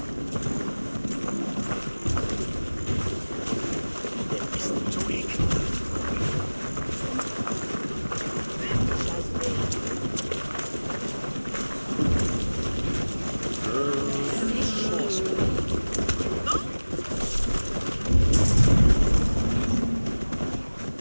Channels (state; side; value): inverted; both; correlation -1.00